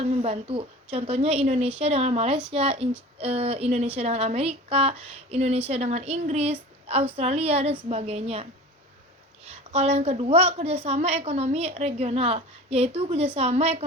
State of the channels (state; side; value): normal; both; correlation 0.37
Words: membantu. Contohnya Indonesia dengan Malaysia, Indonesia dengan Amerika, Indonesia dengan Inggris, Australia, dan sebagainya. Kalau yang kedua, kerjasama ekonomi regional, yaitu kerjasama